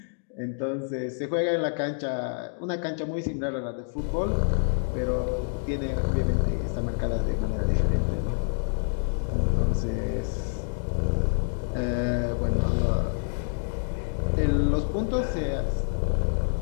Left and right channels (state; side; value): silent; right; digital silence